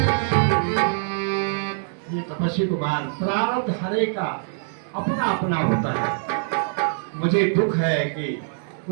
ये तपस्वी कुमार, प्रारब्ध हरे का अपना अपना होता है। मुझे दुख है कि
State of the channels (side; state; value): left; silent; digital silence